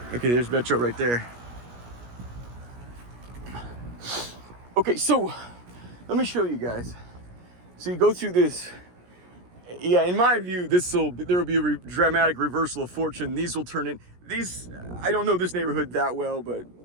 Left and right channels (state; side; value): late; left; 17 ms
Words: Okay, there's Metro right there. Okay, so let me show you guys. So you go through this. Yeah, in my view, there will be a dramatic reversal of fortune. These will turn in. I don't know this neighborhood that well, but